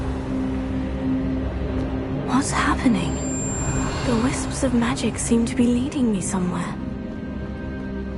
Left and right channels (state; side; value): identical; both; correlation 1.00